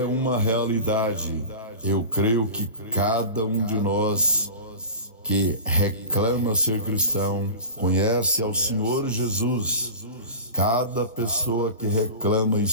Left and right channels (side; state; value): both; inverted; correlation -0.33